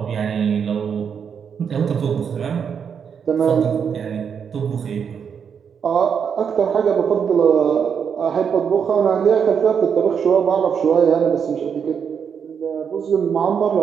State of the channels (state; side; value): quieter; left; 7.1 dB